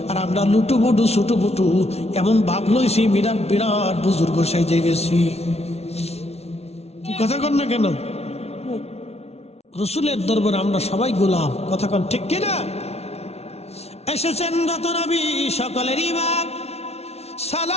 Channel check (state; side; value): late; right; 0.31 ms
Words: আর আমরা লুটুপুটু ছুটুপুটু এমন ভাব লইছি, বিরাট বিরাট বুজুর্গ সেজে গেছি। কথা কন না কেন? রাসূলের দরবারে আমরা সবাই গোলাম। কথা কন ঠিক কিনা? এসেছেন রত নবী, সকলের ইমাম।